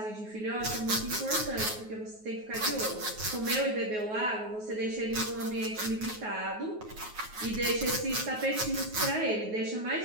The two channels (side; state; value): left; late; 9.4 ms